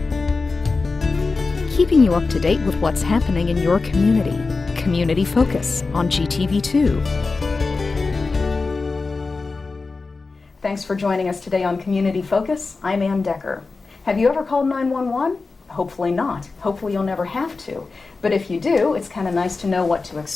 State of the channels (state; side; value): quieter; right; 4.0 dB